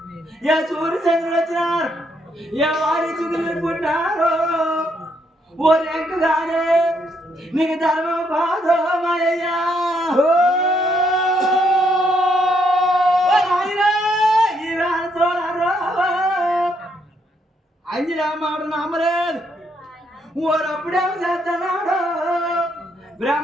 ఏ సూర్యచంద్రుడు వచ్చినారు, ఏ వారి చుగులు పుట్టినారు. ఓ రెంకుగానే నీకు ధర్మం కాదు మాయ్యా. అంజరామాడు నమ్మలేదు, ఊరప్పుడేమో చేస్తున్నాడు.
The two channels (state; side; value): normal; both; correlation 0.74